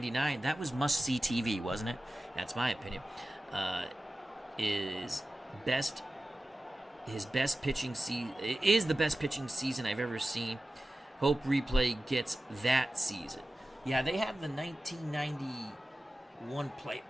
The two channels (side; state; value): both; normal; correlation 0.95